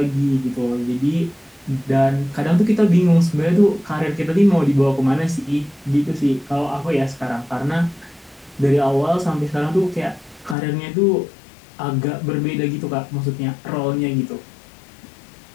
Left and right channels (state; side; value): drops out; right; at 10.6 s